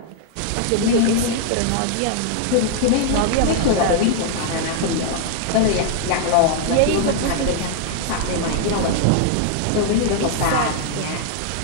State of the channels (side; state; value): both; different; correlation 0.00